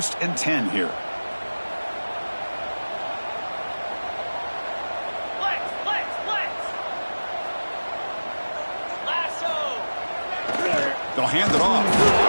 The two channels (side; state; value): both; inverted; correlation -1.00